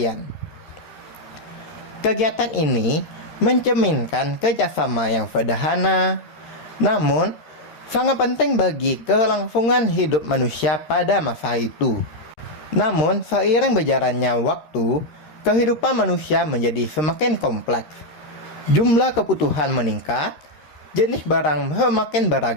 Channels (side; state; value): right; late; 13 ms